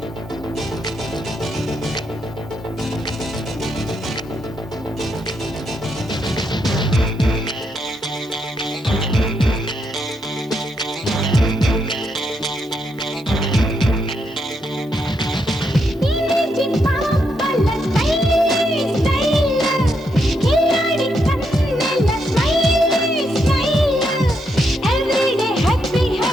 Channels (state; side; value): normal; both; correlation 0.79